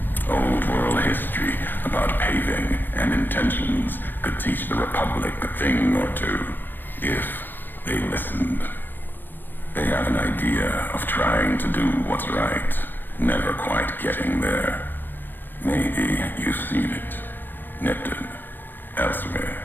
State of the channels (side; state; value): right; late; 0.093 ms